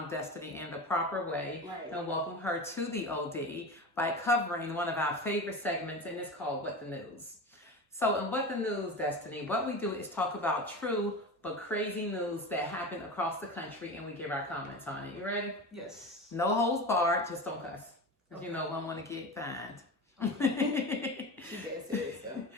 in the proper way and welcome her to the OD by covering one of our favorite segments, and it's called What the News. So in What the News, Destiny, what we do is talk about true but crazy news that happened across the country, and we give our comments on it. You ready? Yes. No holds barred, just don't cuss. Because you know I want to get fined. She's dead serious, so.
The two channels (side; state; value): both; normal; correlation 0.28